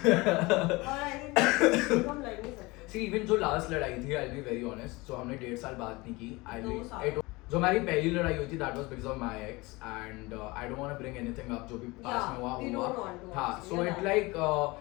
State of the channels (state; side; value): quieter; right; 23.1 dB